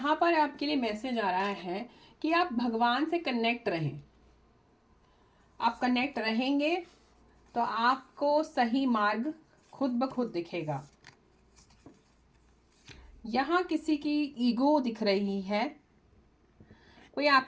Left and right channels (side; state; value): both; identical; correlation 1.00